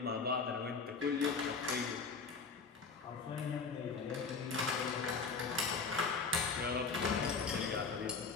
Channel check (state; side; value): quieter; right; 4.9 dB